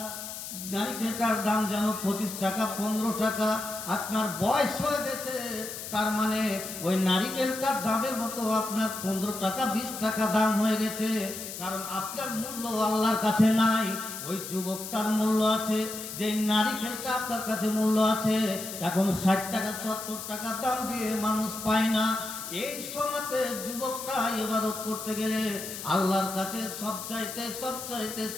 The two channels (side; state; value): left; noise; hiss, 9 dB below the sound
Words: নারিকেলটার দাম যেন 25 টাকা 15 টাকা, আপনার বয়স হয়ে গেছে, তার মানে ওই নারিকেলটার দামের মতো আপনার 15 টাকা 20 টাকা দাম হয়ে গেছে। কারণ আপনার মূল্য আল্লাহর কাছে নাই, ওই যুবকটার মূল্য আছে। যে নারিকেলটা আপনার কাছে মূল্য আছে, এখন 60 টাকা 70 টাকা দাম দিয়ে মানুষ পায় না। এই সময়তে যুবকটা ইবাদত করতে গেলে আল্লাহর কাছে